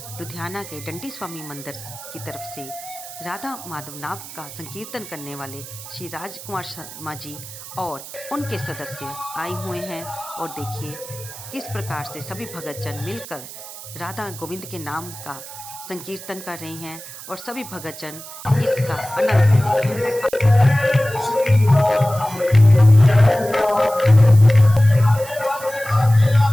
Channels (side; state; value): right; noise; hiss, 14 dB below the sound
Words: लुधियाना के डंडी स्वामी मंदिर की तरफ से राधा माधव नाम का संकीर्तन करने वाले श्री राजकुमार शर्मा जी और उनके सदस्य आए हुए हैं। और देखिए किस प्रकार से सभी भक्तजन मिलकर राधा गोविंद के नाम का संकीर्तन कर रहे हैं और सभी भक्तजन इसका आनंद ले रहे हैं।